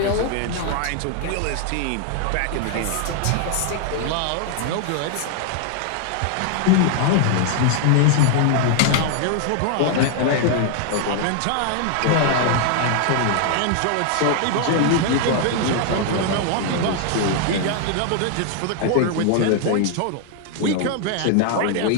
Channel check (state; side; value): different; both; correlation 0.00